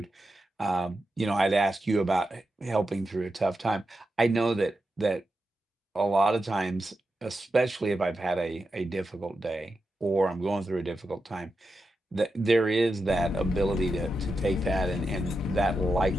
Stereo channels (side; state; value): both; normal; correlation 0.88